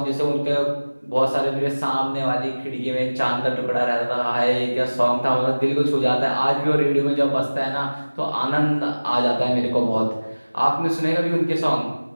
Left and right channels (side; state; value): both; inverted; correlation -1.00